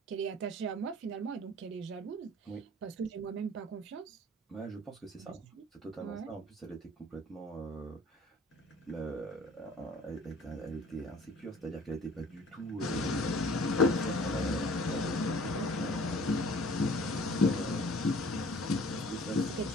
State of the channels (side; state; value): both; normal; correlation 0.50